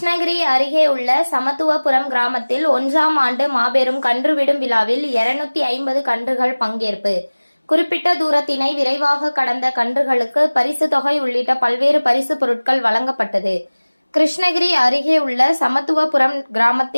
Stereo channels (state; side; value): inverted; both; correlation -1.00